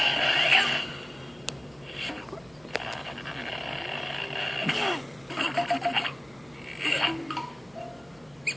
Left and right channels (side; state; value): right; noise; hum, 29 dB below the sound